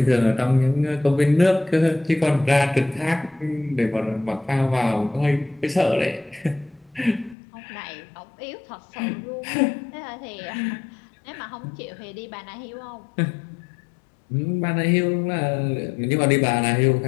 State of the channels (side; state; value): right; drops out; at 7.4 s